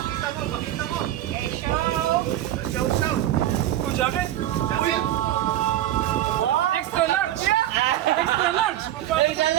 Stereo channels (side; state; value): left; quieter; 13.0 dB